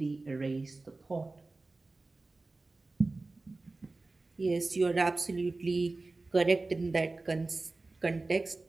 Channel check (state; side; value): quieter; left; 3.3 dB